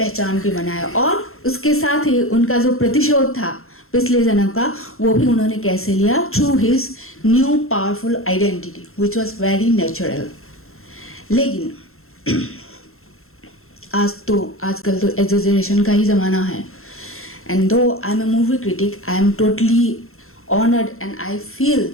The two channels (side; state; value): right; late; 0.62 ms